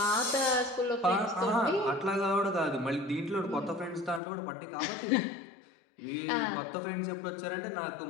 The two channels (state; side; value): drops out; right; at 4.2 s